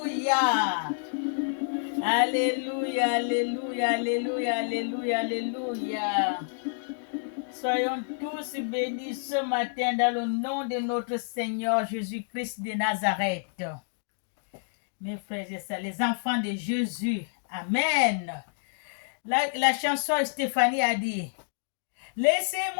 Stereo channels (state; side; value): silent; right; digital silence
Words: Alléluia, alléluia, alléluia, alléluia, alléluia. Soyons tous bénis ce matin dans le nom de notre Seigneur Jésus-Christ de Nazareth. Mes frères et sœurs, les enfants de Jésus. Amen. La chanson Stéphanie a dit,